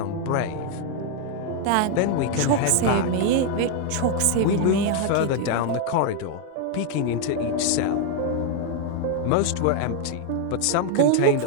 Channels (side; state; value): both; different; correlation 0.00